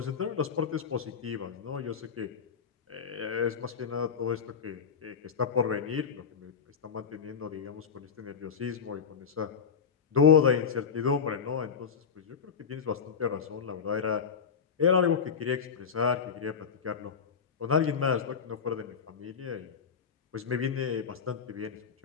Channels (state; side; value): quieter; right; 6.5 dB